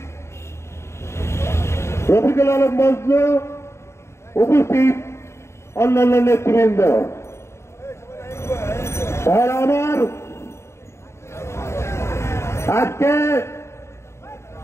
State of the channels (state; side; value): late; right; 0.13 ms